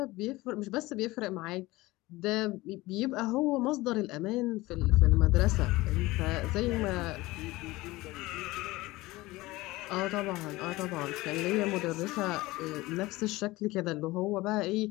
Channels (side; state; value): right; quieter; 19.8 dB